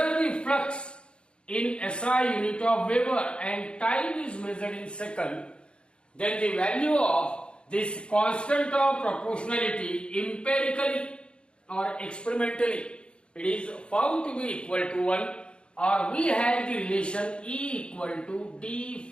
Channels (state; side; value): late; right; 0.055 ms